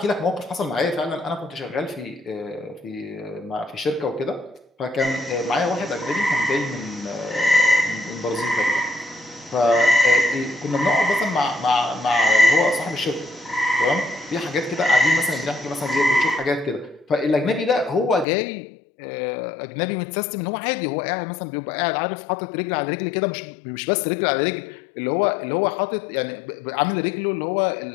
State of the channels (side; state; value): right; drops out; at 18.2 s